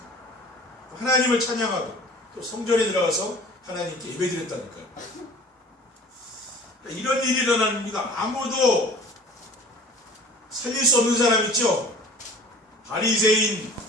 하나님을 찬양하고 또 성전에 들어가서 하나님께 예배드렸다니까요. 그러니까 이런 일이 일어나는 겁니다. 아무도 살릴 수 없는 사람 있죠. 바리새인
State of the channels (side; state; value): both; normal; correlation 0.46